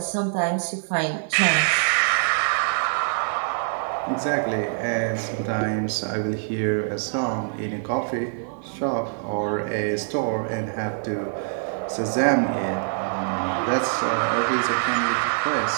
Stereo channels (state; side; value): silent; left; 55 dB below the other